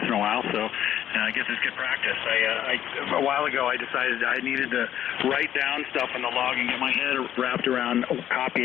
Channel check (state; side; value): quieter; right; 11.1 dB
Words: in a while, so I guess it's good practice. A while ago, I decided I needed to write down stuff in the log and get my head wrapped around